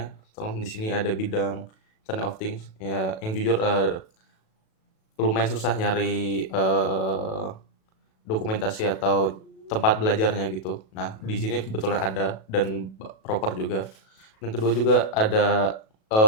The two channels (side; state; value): right; late; 37 ms